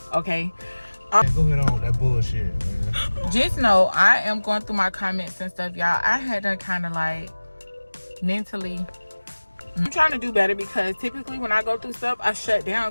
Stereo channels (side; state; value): both; inverted; correlation -1.00